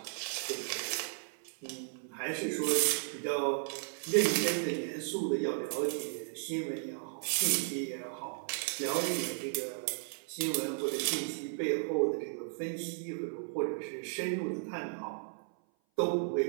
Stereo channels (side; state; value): left; silent; 55 dB below the other